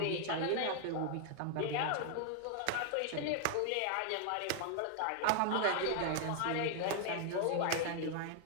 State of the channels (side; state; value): both; different; correlation 0.00